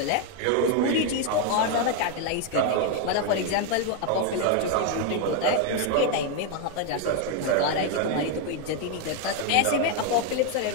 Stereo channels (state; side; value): different; both; correlation 0.01